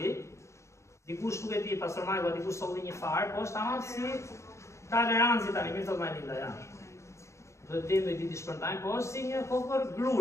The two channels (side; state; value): right; late; 0.14 ms